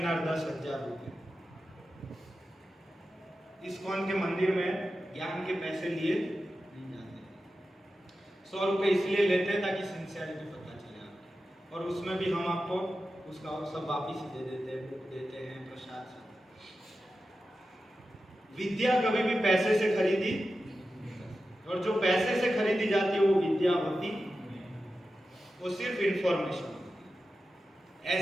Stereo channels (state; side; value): normal; both; correlation 0.92